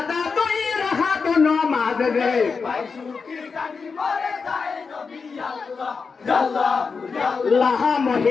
দুই রাখাত নামাজ রে লাহা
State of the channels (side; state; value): right; quieter; 5.1 dB